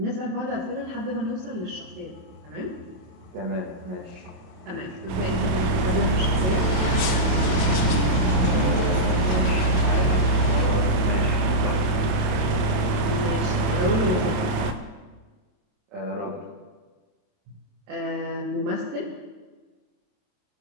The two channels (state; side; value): late; left; 28 ms